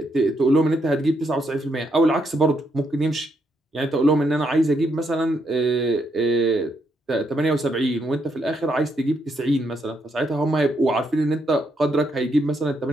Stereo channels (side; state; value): both; normal; correlation 0.77